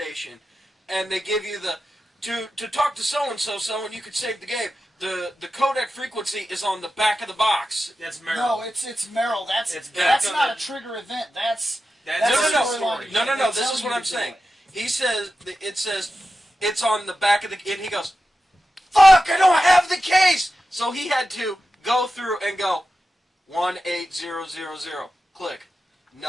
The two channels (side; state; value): both; normal; correlation 0.92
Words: And they give you the... To talk to so-and-so, and you could save the game. The codec frequency is on the back of the box. That's Merrill. No, it's Merrill. That's not a trigger event. No. This is what I'm saying. He says it's on the back of the. And he goes, "Fuck! I don't have the case." So he had to go through and go 18000. Click,